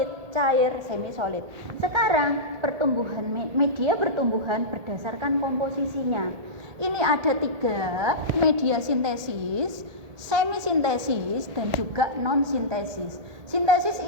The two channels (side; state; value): left; late; 1.8 ms